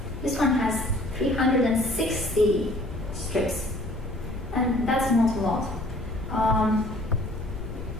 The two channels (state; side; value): noise; left; rumble, 9 dB below the sound